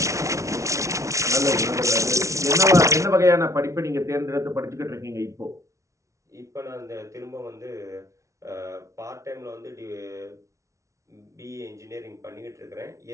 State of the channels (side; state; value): left; late; 0.14 ms